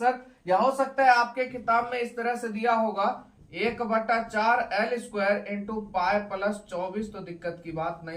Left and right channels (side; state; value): both; identical; correlation 1.00